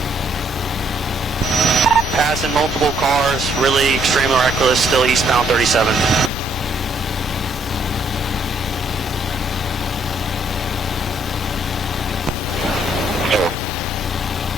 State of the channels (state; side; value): normal; both; correlation 0.68